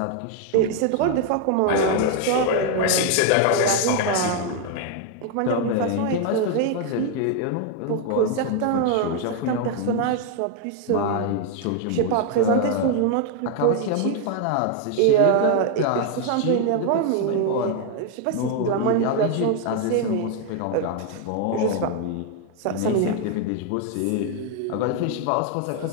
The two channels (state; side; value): different; both; correlation 0.00